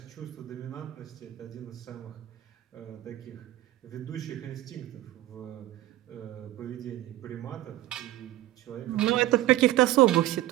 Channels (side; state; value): left; quieter; 15.1 dB